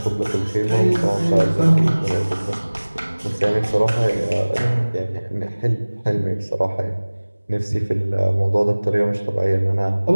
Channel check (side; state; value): both; inverted; correlation -1.00